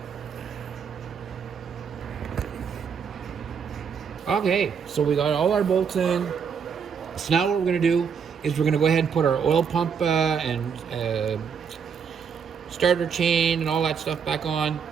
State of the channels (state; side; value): quieter; left; 6.7 dB